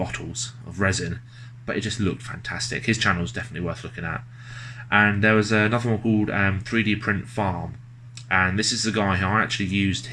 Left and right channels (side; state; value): both; identical; correlation 1.00